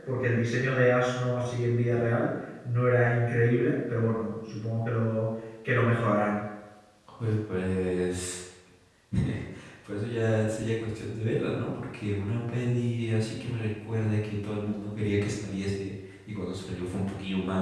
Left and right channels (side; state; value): both; identical; correlation 1.00